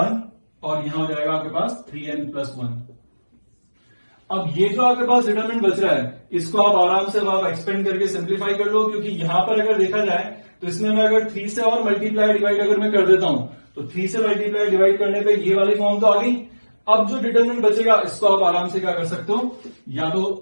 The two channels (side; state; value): both; inverted; correlation -1.00